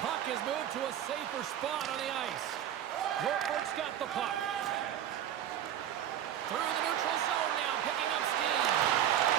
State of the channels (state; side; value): quieter; left; 10.7 dB